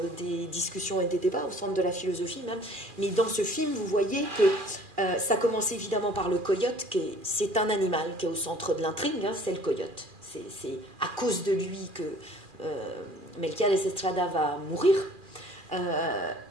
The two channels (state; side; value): late; left; 2.4 ms